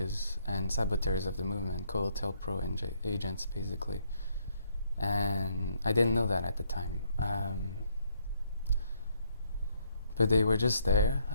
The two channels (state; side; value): inverted; both; correlation -0.70